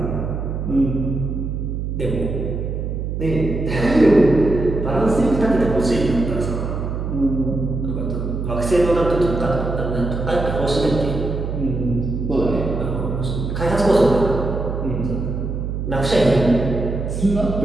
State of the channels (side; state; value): right; noise; hum, 3 dB below the sound